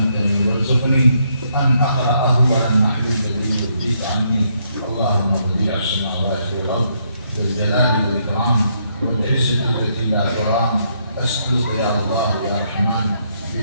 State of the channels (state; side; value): inverted; both; correlation -0.74